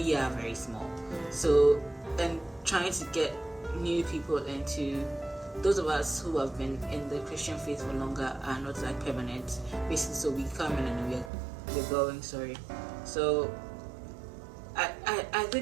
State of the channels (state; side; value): drops out; left; at 11.3 s